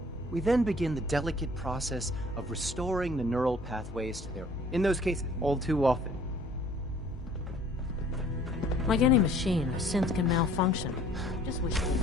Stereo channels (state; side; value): normal; both; correlation 0.54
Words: We then begin the delicate process of restoring the neural pathways to their... In those cases, all too often. Like any machine, a synth can malfunction. Just wish it didn't